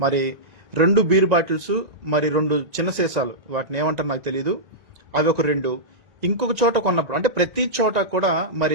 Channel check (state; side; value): late; left; 1.9 ms